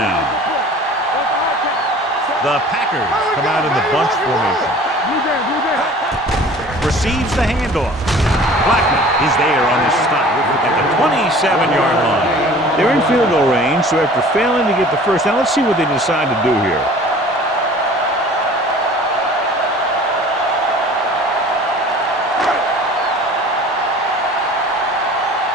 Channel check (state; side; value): normal; both; correlation 0.46